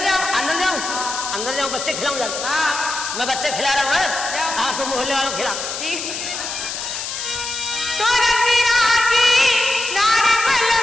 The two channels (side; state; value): left; noise; hiss, 6 dB below the sound